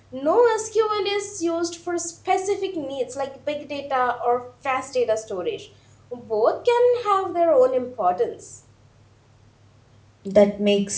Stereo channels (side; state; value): both; identical; correlation 1.00